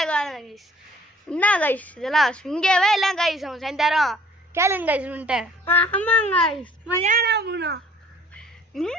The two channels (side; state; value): both; normal; correlation 0.55